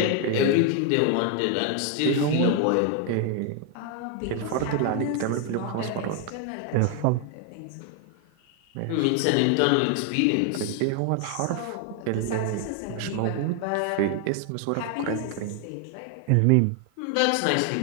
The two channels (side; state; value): both; different; correlation 0.01